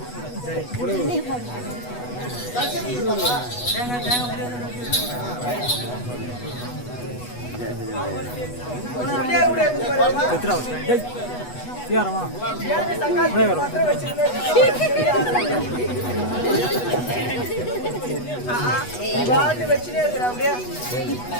வச்சுனே இருக்கிற அப்படியே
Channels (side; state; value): right; late; 8.2 ms